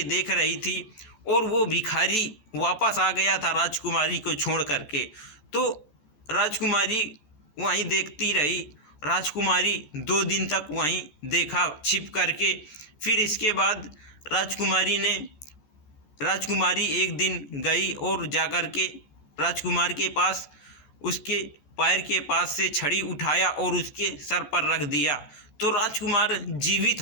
देख रही थी और वो भिखारी वापस आ गया था राजकुमारी को छोड़ करके। तो राजकुमारी वहीं देखती रही। राजकुमारी 2 दिन तक वहीं देखा छिप करके। फिर इसके बाद राजकुमारी एक दिन गई और जाकर के राजकुमार के पास उसके पैर के पास से छड़ी उठाया और उसके सर पर रख दिया, तो राजकुमार जीवित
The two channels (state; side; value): late; right; 14 ms